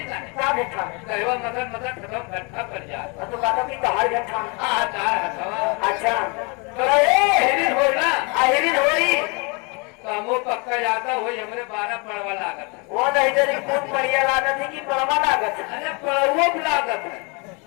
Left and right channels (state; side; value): quieter; right; 31.0 dB